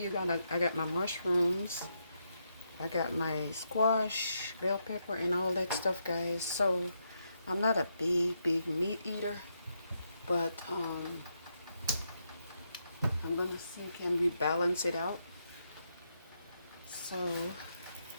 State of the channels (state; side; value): inverted; both; correlation -0.81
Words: I got my mushrooms, I got my squash, bell pepper, and all that stuff, guys. So I'm not a big meat eater, but I'm gonna see, can we balance it out? So